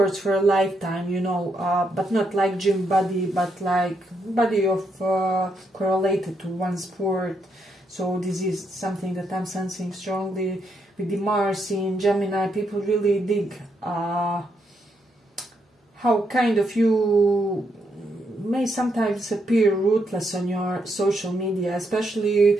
for a lifetime, you know, but not like gym body, but like body of correlated to one sport. So this is something that I'm sensing strongly. With the Mars in Gemini, people really dig how kind of you may sometimes appear ruthless on your social media, especially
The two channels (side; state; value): both; normal; correlation 0.78